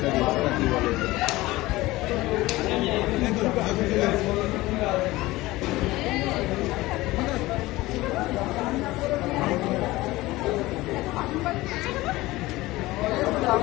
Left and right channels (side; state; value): right; quieter; 19.1 dB